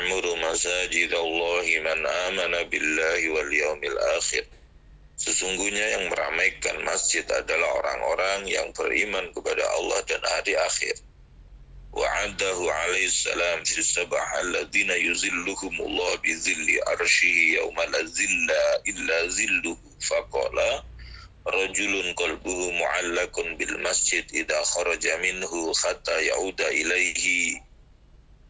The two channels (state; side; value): identical; both; correlation 1.00